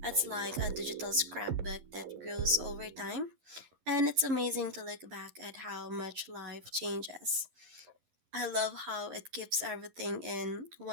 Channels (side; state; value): left; late; 11 ms